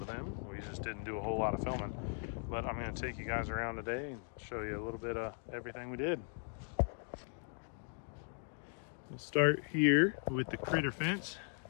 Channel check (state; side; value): silent; right; 52 dB below the other